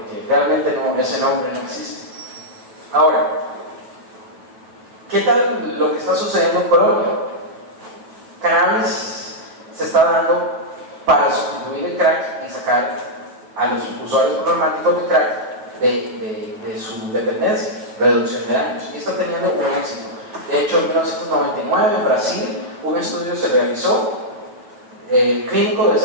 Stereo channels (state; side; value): late; left; 9.2 ms